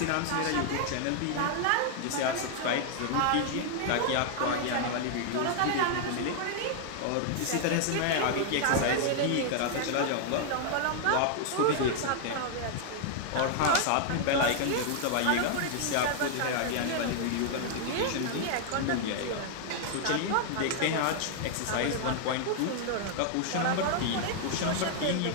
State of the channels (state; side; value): different; both; correlation 0.00